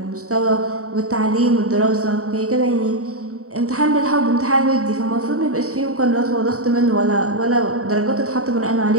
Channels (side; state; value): left; late; 0.65 ms